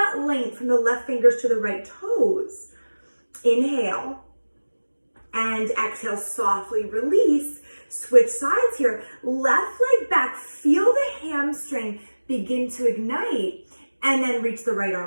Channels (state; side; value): inverted; both; correlation -1.00